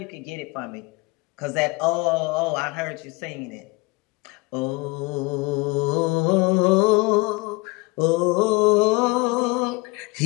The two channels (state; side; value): quieter; right; 25.4 dB